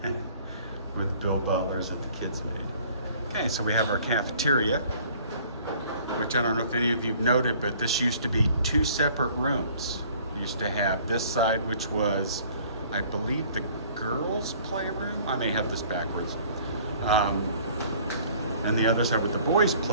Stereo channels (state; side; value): inverted; both; correlation -0.54